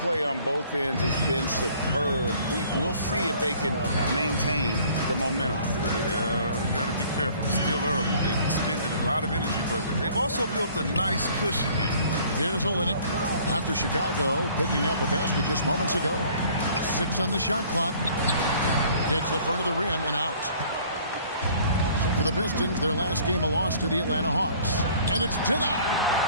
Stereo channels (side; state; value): both; inverted; correlation -0.55